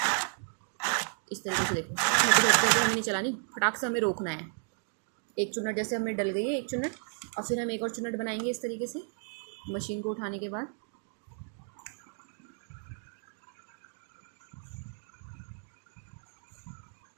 देखो हमें नहीं चलानी, फटाक से हमें रोकना है। एक चुन्नट जैसे हमें डल गई है एक चुन्नट, और फिर हम एक और चुन्नट बनाएंगे इस तरीके से मशीन को उठाने के बाद।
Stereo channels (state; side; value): silent; left; 56 dB below the other